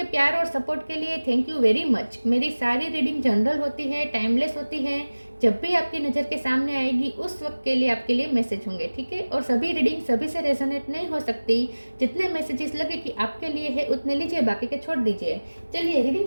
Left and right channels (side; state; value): both; inverted; correlation -1.00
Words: प्यार और सपोर्ट के लिए थैंक यू वेरी मच। मेरी सारी रीडिंग जनरल होती है, टाइमलेस होती है। जब भी आपकी नज़र के सामने आएगी उस वक्त के लिए आपके लिए मैसेज होंगे, ठीक है। और सभी रीडिंग सभी से रेजोनेट नहीं हो सकती। जितने मैसेजेस लगे कि आपके लिए है उतने लीजिए, बाकी के छोड़ दीजिए। चलिए रीडिंग